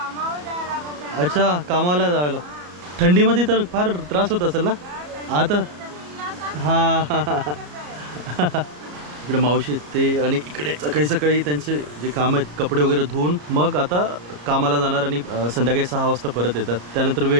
अच्छा, कामाला जायला. थंडीमध्ये तर फार त्रास होत असेल ना आता? हा इकडे मावशी ते आणि इकडे सकाळी त्यांचे जे काम आहेत कपडे वगैरे धुवून मग आता कामाला जाणार आणि संध्याकाळी 6 वाजता परत येतात. त्यानंतर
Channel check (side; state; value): left; late; 34 ms